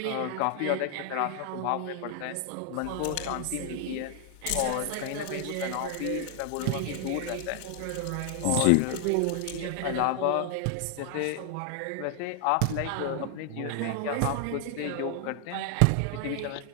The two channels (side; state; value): both; different; correlation 0.00